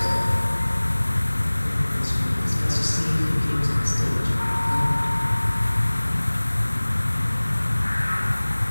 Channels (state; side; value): inverted; both; correlation -1.00